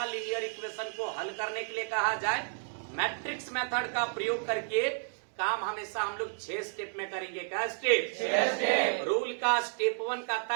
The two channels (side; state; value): left; silent; 57 dB below the other